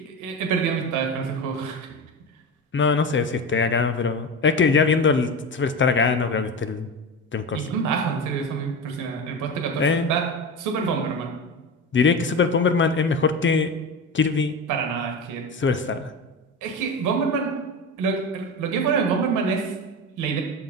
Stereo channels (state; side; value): normal; both; correlation 0.24